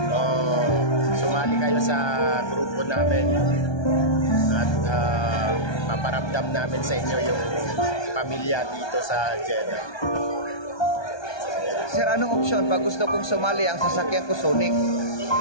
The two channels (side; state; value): right; late; 1.2 ms